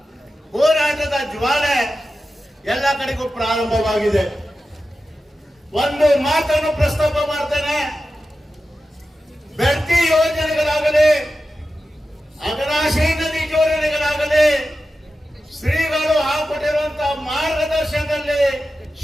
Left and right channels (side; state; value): both; normal; correlation 0.92